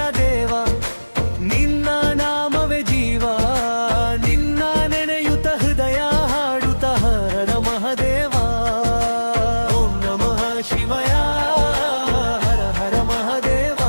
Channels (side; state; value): both; inverted; correlation -1.00